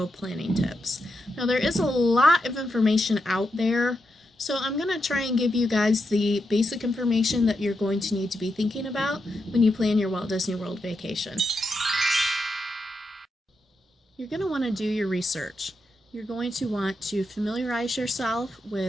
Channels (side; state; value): both; normal; correlation 0.85